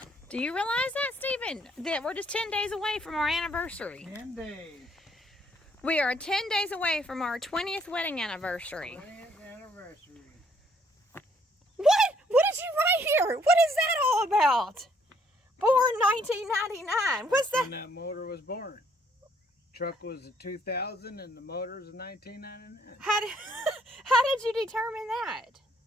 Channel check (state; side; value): normal; both; correlation 0.66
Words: Do you realize that, Stephen? That we're just 10 days away from our anniversary. 10 days. We are 10 days away from our 20th wedding anniversary. 20th anniversary. What? What did you write here? What is that all about? Born 1999. What's that? When that motor was born. Truck was a 2000 and the motor is a 1999. How did you determine that?